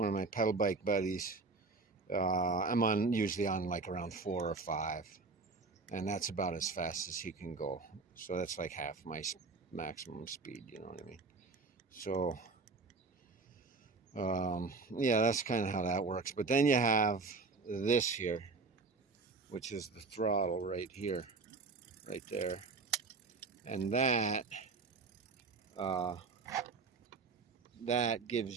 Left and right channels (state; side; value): quieter; left; 4.1 dB